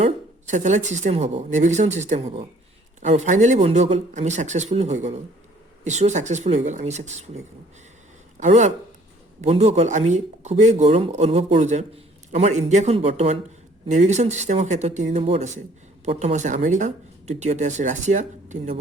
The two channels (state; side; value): normal; both; correlation 0.57